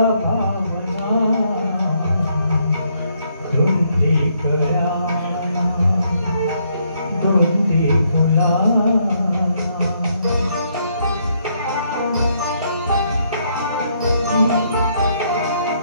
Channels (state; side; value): inverted; both; correlation -0.72